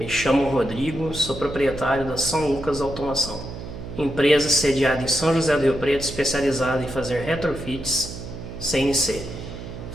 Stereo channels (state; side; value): noise; right; hum, 10 dB below the sound